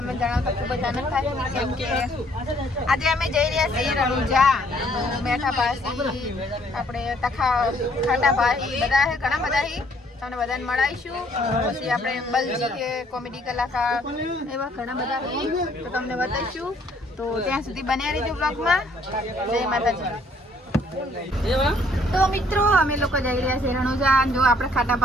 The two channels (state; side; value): normal; both; correlation 0.64